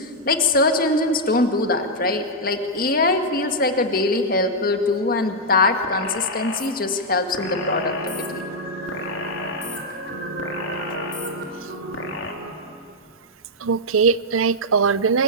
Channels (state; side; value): normal; both; correlation -0.04